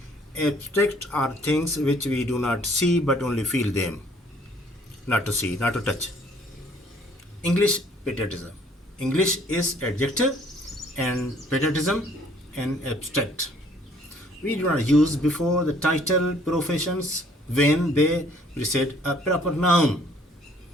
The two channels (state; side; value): normal; both; correlation 0.60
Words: Abstract are things which we do not see but only feel them. Not to see, not to touch. English, patriotism. English is adjective and patriotism and abstract. We do not use before the title professions when they precede a proper noun.